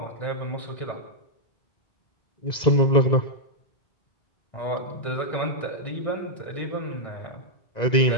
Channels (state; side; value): late; right; 2.0 ms